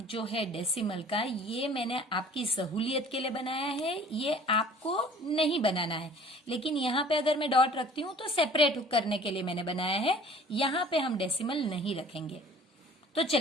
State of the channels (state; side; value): normal; both; correlation 0.50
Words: जो है डेसिमल का, ये मैंने आपकी सहूलियत के लिए बनाया है, ये आपको नहीं बनाना है। लेकिन यहाँ पे अगर मैं डॉट रखती हूँ तो सेपरेट करने के लिए मैंने बनाया है, यहाँ पे हम डेसिमल नहीं रखेंगे। तो